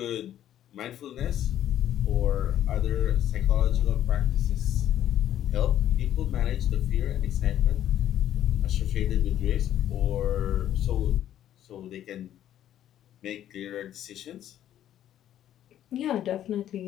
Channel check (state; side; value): quieter; right; 11.5 dB